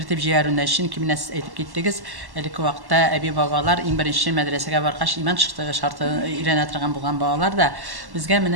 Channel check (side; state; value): left; late; 1.1 ms